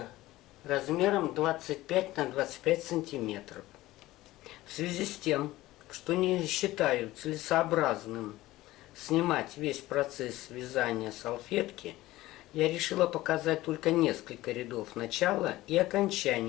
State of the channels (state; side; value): quieter; right; 17.2 dB